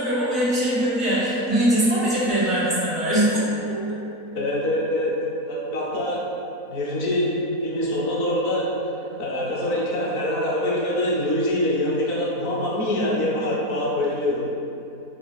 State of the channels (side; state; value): right; late; 4.0 ms